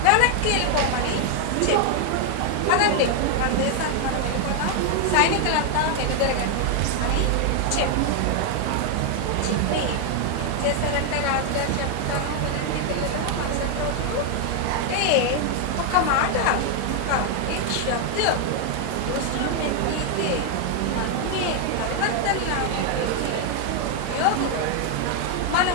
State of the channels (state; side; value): different; both; correlation 0.01